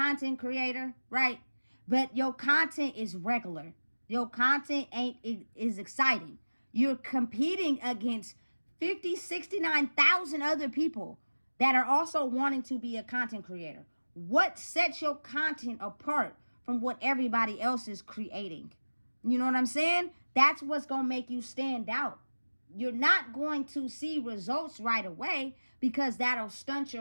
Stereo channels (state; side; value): inverted; both; correlation -1.00